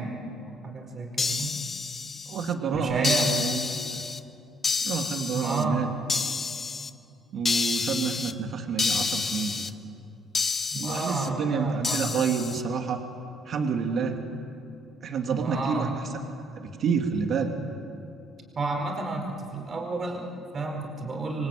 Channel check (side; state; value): both; normal; correlation 0.69